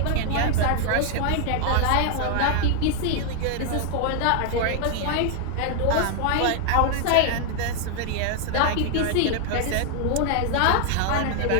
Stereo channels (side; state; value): both; different; correlation 0.00